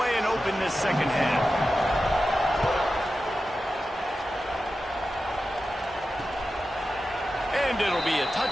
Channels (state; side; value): normal; both; correlation 0.92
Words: and open this 2nd half. And it'll be a